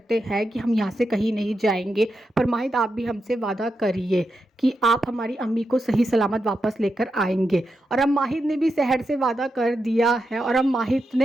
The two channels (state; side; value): normal; both; correlation 0.87